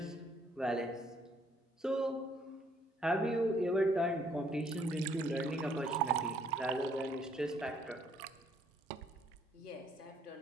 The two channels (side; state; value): both; normal; correlation 0.66